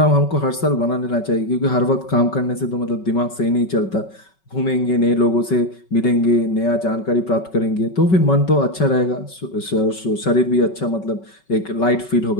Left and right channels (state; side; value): late; right; 5.3 ms